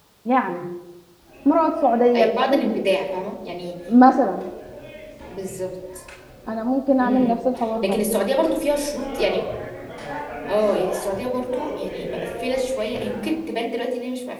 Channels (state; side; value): identical; both; correlation 1.00